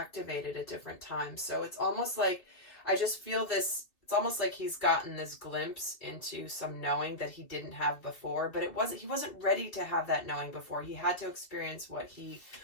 at different times. So it's almost like, I just feel this, it's almost like he's gotten this glimpse into some knowing that he didn't have before, but he wasn't ready to have that knowing before. He had to experience what he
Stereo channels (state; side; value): late; right; 3.3 ms